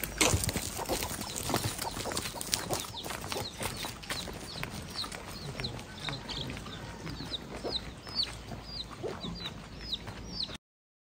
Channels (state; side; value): identical; both; correlation 1.00